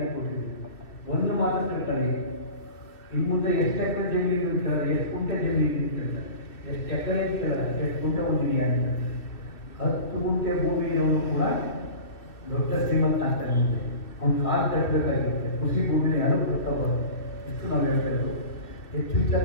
ಕೊಟ್ಟಿದ್ದೀವಿ. ಒಂದು ಮಾತ್ರ ತಿಳ್ಕೊಳ್ಳಿ, ಇನ್ನು ಮುಂದೆ ಎಷ್ಟು ಎಕರೆ ಜಮೀನು ಕೇಳಲ್ಲ, ಎಷ್ಟು ಗುಂಟೆ ಜಮೀನು ಕೇಳಲ್ಲ, ಎಷ್ಟು ಎಕರೆ ಕೇಳಲ್ಲ, ಎಷ್ಟು ಗುಂಟೆ ಹೊಂದಿದೆಯ ಅಂತ. 10 ಗುಂಟೆ ಭೂಮಿಯವರು ಕೂಡ ದೊಡ್ಡ ಶ್ರೀಮಂತ ಆಗ್ತಾ ಇರುತ್ತೆ. ಅವ್ನು ಕಾಲು ಕಟ್ಟಬೇಕಾಗಿರುತ್ತೆ. ಕೃಷಿ ಭೂಮಿನ ಯಾರು ಕಟ್ಟಬಾರ್ದು. ಇಷ್ಟು ನಾವು ಹೇಳ್ತಾ ಇರೋದು. ಹೆಚ್ಚು ವಿಚಾರ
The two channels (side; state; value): right; late; 2.5 ms